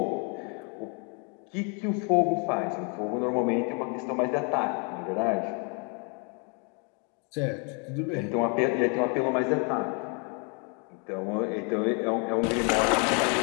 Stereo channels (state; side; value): quieter; right; 36.2 dB